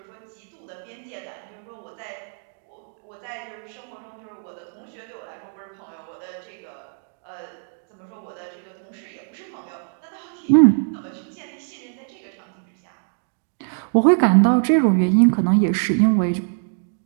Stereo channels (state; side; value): silent; left; 63 dB below the other